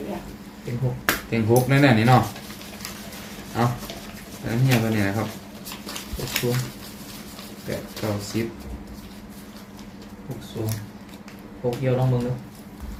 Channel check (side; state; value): both; identical; correlation 1.00